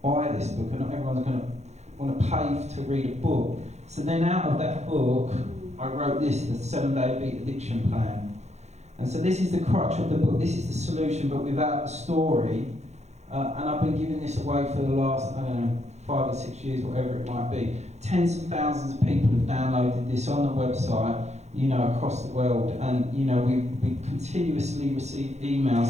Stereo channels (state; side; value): late; left; 0.32 ms